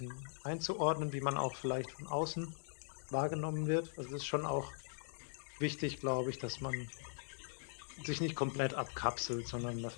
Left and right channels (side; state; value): right; silent; digital silence